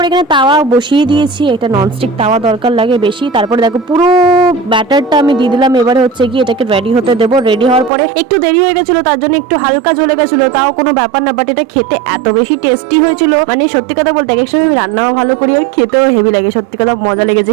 এখানে তাওয়া বসিয়ে দিয়েছি, একটা ননস্টিক তাওয়া দরকার লাগে বেশি। তারপরে দেখো পুরো ব্যাটারটা আমি দিয়ে দিলাম। এবারে হচ্ছে কি এটাকে রেডি হতে দেবো। রেডি হওয়ার পরে একটু দেরি হয়ে গেছিল, তার জন্য একটু হালকা জ্বলে গেছিল, তাও কোনো ব্যাপার না। বাট এটা খেতে এত বেশি টেস্টি হয়েছিল, মানে সত্যি কথা বলতে এক সময় আমি রান্নাও ভালো করি আর খেতেও হেভি লাগে। সত্যি কথা মজা লেগেছে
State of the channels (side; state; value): left; drops out; at 7.9 s